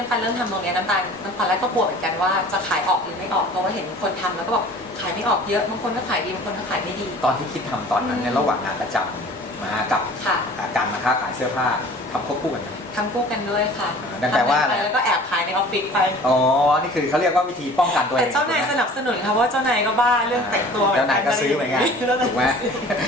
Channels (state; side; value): normal; both; correlation 0.46